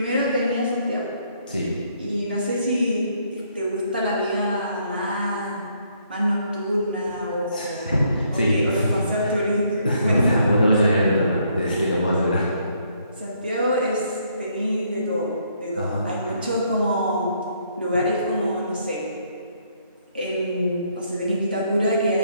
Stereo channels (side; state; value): both; inverted; correlation -0.70